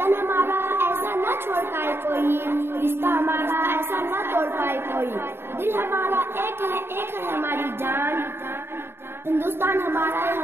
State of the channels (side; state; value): left; late; 0.11 ms